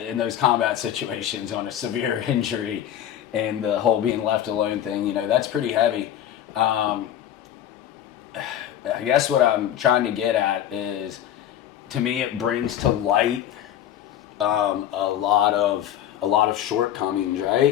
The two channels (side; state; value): right; quieter; 10.9 dB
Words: those combat situations on a severe injury and the whole being left alone thing, you know, that's pretty heavy. I guess what I'm trying to get at is, to me, it brings to light a lot of shortcomings,